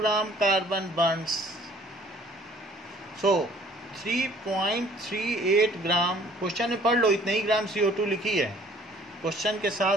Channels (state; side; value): normal; both; correlation 0.56